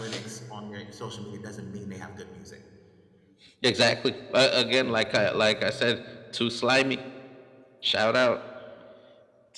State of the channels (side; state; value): both; identical; correlation 1.00